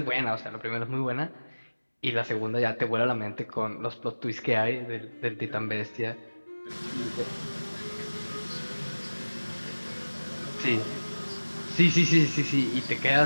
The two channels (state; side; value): inverted; both; correlation -1.00